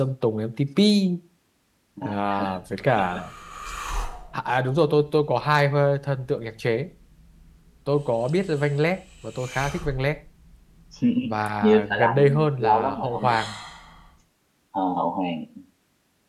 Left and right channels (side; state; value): both; identical; correlation 1.00